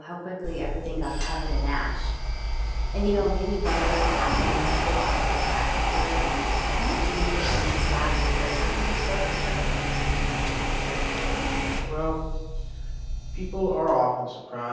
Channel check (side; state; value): both; identical; correlation 1.00